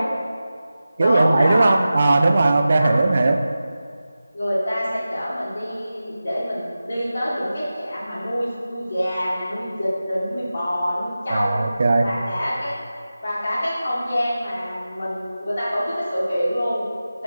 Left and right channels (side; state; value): both; inverted; correlation -0.94